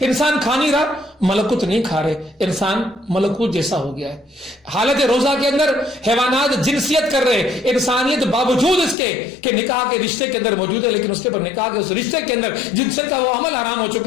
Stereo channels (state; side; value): drops out; right; at 9.0 s